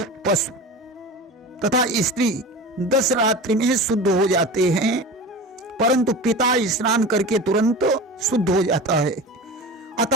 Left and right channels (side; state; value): both; normal; correlation 0.31